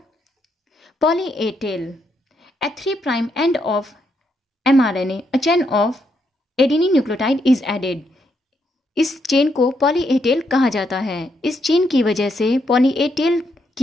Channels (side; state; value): both; normal; correlation 0.78